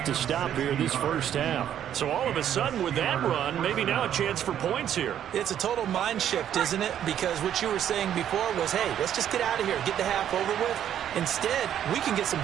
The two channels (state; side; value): quieter; left; 10.2 dB